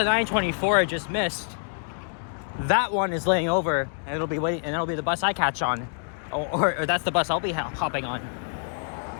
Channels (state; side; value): silent; right; 59 dB below the other